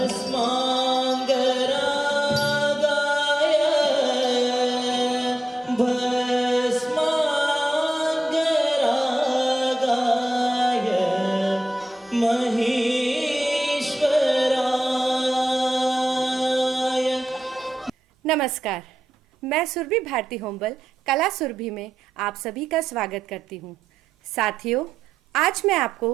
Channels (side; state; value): both; normal; correlation 0.89